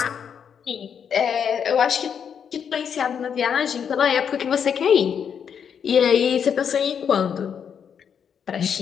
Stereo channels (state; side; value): quieter; right; 7.6 dB